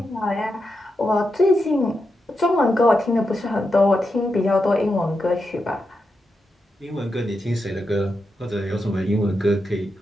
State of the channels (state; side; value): normal; both; correlation 0.86